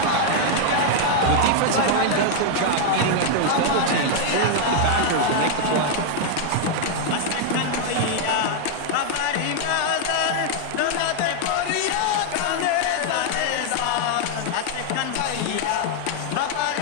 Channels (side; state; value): both; different; correlation 0.00